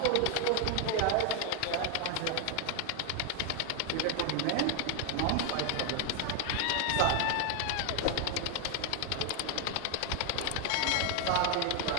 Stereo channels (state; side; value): different; both; correlation 0.00